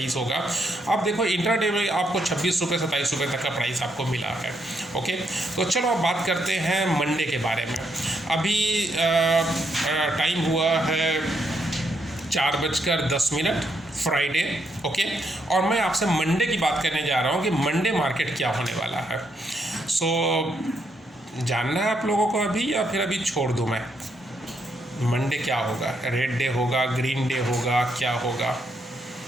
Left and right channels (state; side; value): normal; both; correlation 0.77